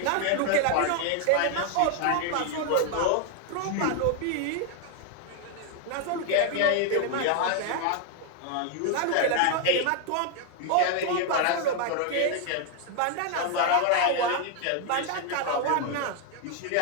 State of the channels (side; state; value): both; different; correlation 0.00